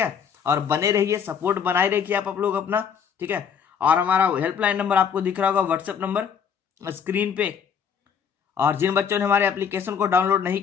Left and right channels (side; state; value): right; quieter; 7.3 dB